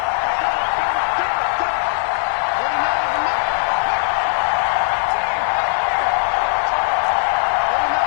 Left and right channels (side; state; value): right; silent; digital silence